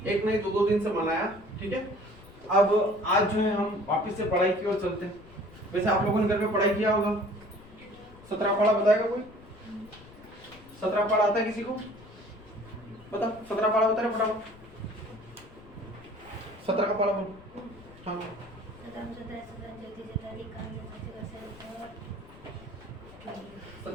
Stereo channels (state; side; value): noise; left; rumble, 21 dB below the sound